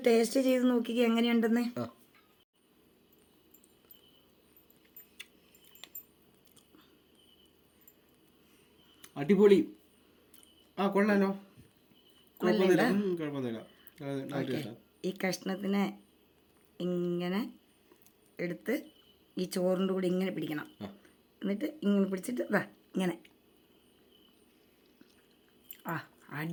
ടേസ്റ്റ് ചെയ്ത് നോക്കിക്കുക എങ്ങനെയുണ്ടെന്ന്. അടിപൊളി. കൊള്ളാലോ. ഈ കഷ്ണത്തിനെ ഇങ്ങനെ എടുത്ത് ഈ ചോറിൻ്റെ കൂടെ ഇങ്ങനെ പിടിക്കണം. എന്നിട്ട് ഇങ്ങനെ പിടിച്ചിട്ട് ഇങ്ങനെ.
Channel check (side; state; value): both; identical; correlation 1.00